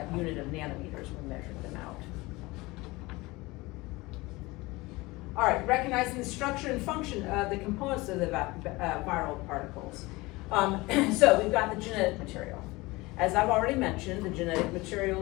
unit of nanometers when measuring them out. All right, recognizing the structure and function of the components of the viral particles. So we've got the genetic material. As I've already mentioned, the genetic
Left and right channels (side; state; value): right; quieter; 22.0 dB